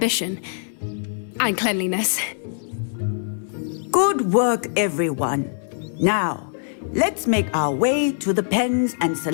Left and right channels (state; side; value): silent; right; 64 dB below the other